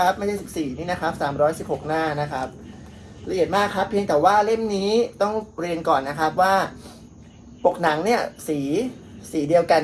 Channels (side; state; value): both; identical; correlation 1.00